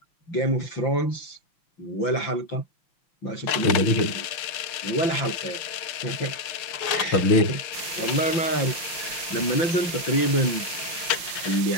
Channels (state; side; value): late; right; 5.7 ms